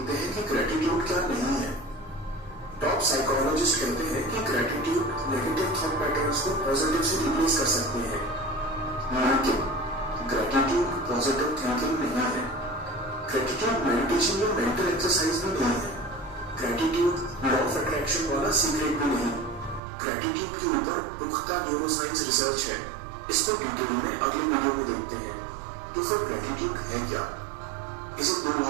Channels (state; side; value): drops out; left; at 19.8 s